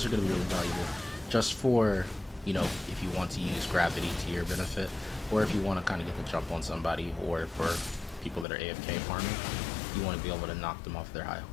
are going to be really valuable just for, if you want to use gravity to your benefit, or if you want to kind of get the jump on somebody, or for people that are AFK farming, you want to be able to knock them off their high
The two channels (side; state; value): right; drops out; at 8.5 s